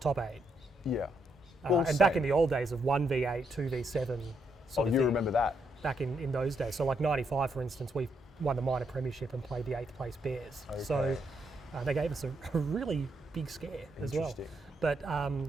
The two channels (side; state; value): both; normal; correlation 0.77